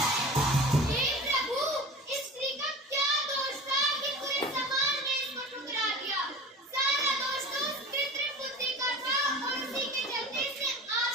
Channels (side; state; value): both; normal; correlation 0.36